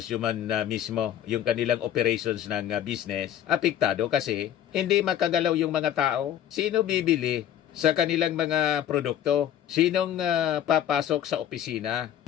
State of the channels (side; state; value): right; quieter; 10.7 dB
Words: man mismo, yung kanilang operations ng business, apektado kasi hindi makagalaw yung mga tao. Sino bibili sa kanilang mga produkto? Sinong papasok sa opisina